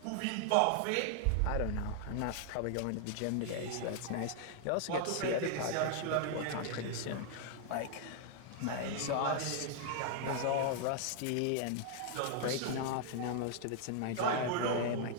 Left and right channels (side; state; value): both; different; correlation -0.01